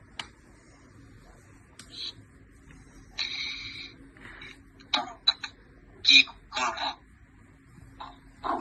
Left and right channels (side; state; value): both; identical; correlation 1.00